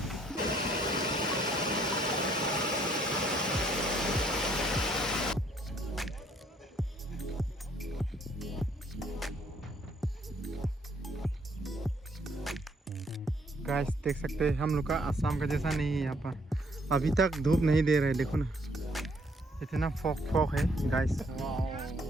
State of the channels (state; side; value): normal; both; correlation 0.66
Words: गाइस देख सकते हैं हम लोग का आसाम का जैसा नहीं है यहाँ पर। अभी तक धूप नहीं दे रहे, देखो ना इतना फॉग फॉग है गाइस।